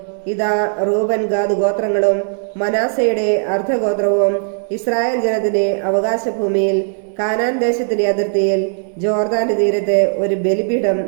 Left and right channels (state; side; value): silent; left; digital silence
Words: ഇതാ റൂബൻ ഗാദ് ഗോത്രങ്ങളും മനാസയുടെ അർദ്ധഗോത്രവും ഇസ്രായേൽ ജനത്തിന്റെ അവകാശഭൂമിയിൽ കാനാൻ ദേശത്തിന്റെ അതിർത്തിയിൽ ജോർദാന്റെ തീരത്ത് ഒരു ബലിപീഠം